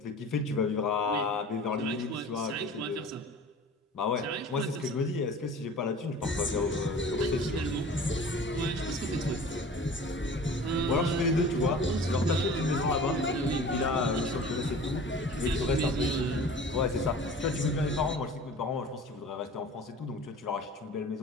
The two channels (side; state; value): both; normal; correlation 0.42